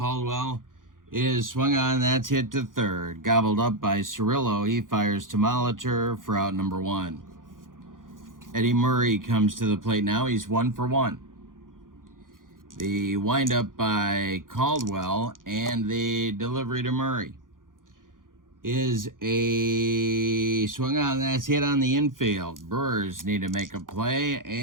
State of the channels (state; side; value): late; left; 0.90 ms